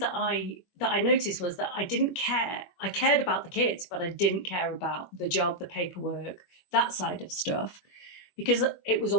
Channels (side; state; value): right; late; 21 ms